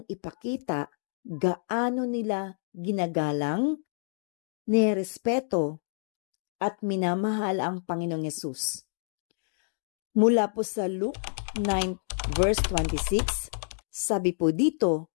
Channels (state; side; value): silent; right; digital silence